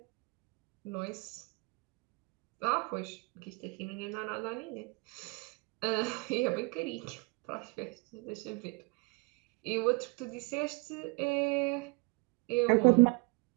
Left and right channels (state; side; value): quieter; left; 29.2 dB